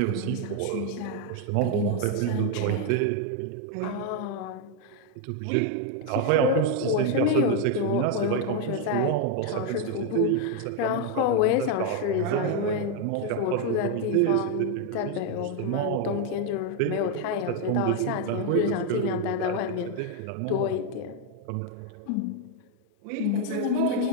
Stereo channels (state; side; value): different; both; correlation 0.01